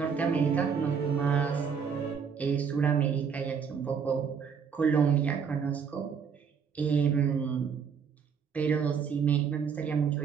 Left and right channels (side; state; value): left; quieter; 6.6 dB